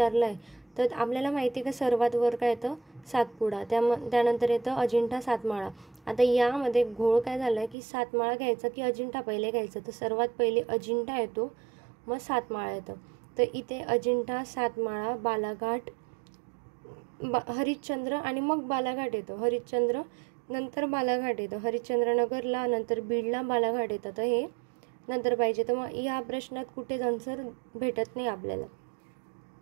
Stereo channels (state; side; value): drops out; left; at 7.8 s